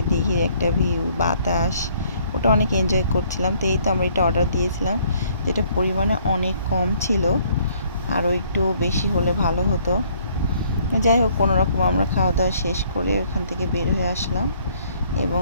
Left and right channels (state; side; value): inverted; both; correlation -0.63